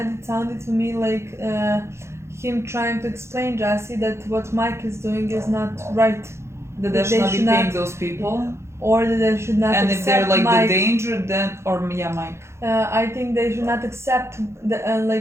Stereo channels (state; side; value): late; left; 0.13 ms